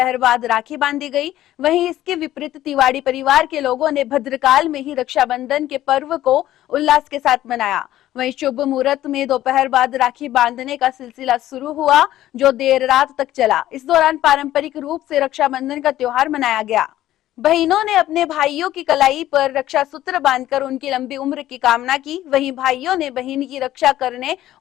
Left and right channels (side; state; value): right; quieter; 13.7 dB